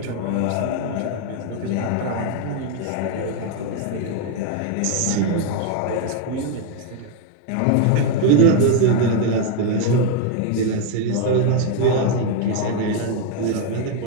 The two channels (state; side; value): different; both; correlation 0.01